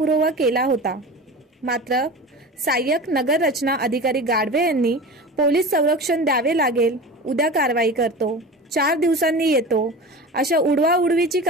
केला होता। मात्र सहाय्यक नगर रचना अधिकारी गाडवे यांनी पोलीस संरक्षण द्यावे लागेल, उद्या कारवाई करतो, 4 दिवसांनी येतो, अशा उडवाउडवीची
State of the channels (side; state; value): both; normal; correlation 0.32